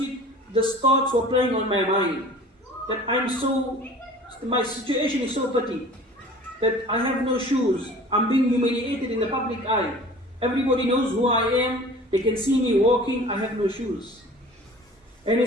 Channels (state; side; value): normal; both; correlation 0.44